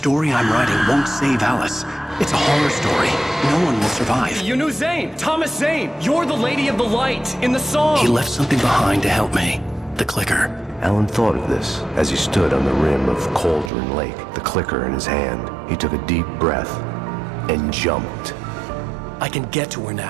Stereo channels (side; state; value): left; drops out; at 13.7 s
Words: I'm writing won't save Alice. It's a horror story. No one will survive. You knew Zane! Thomas Zane! You're the Lady of the Light in the song! He left something behind to help me. The clicker. Alan thought of this as he stood on the rim of Cauldron Lake, the clicker in his hand. He took a deep breath and jumped. I can get to her